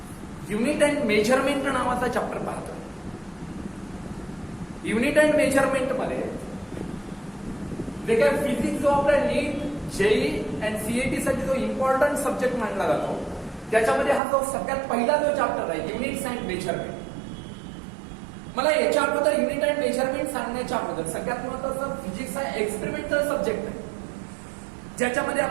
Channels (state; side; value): drops out; left; at 14.2 s